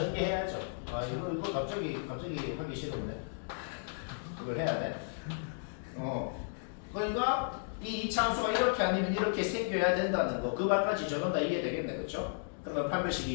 이거 갑자기 하기 싫은데 이걸 해야 돼. 그러니까 이 2차 함수가 이렇게 아니면 이렇게 생겨야 된다는 거, 그 말까지 저는 다 이해되겠네, 그렇죠? 그러면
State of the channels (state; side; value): silent; right; digital silence